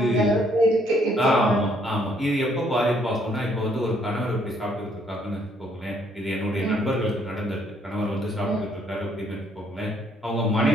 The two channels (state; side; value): normal; both; correlation 0.67